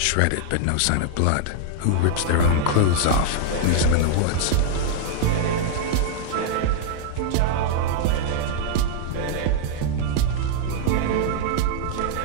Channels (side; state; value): both; different; correlation -0.01